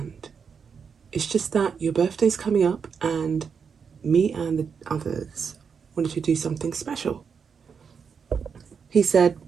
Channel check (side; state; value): left; quieter; 6.3 dB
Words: It's just that your birthday's coming up and me and the others wanted to do something special. He said,